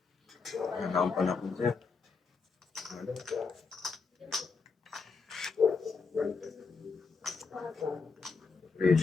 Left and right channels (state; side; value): quieter; right; 4.7 dB